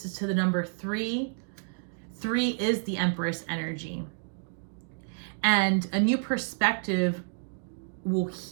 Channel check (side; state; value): left; silent; digital silence